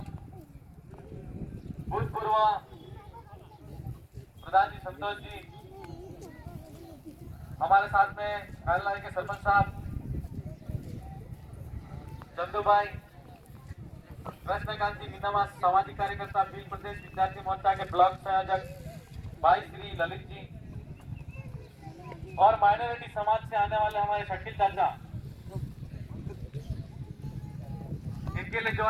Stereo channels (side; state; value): both; identical; correlation 1.00